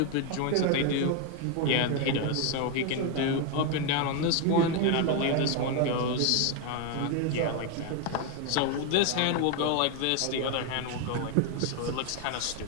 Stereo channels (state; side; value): different; both; correlation 0.01